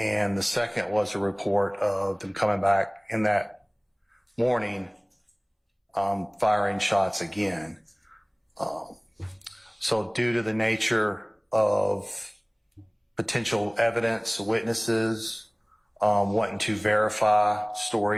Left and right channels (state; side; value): identical; both; correlation 1.00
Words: the second was a report of them coming back in that morning, firing shots again. So due to the nature of potential evidence, witnesses, wanting to verify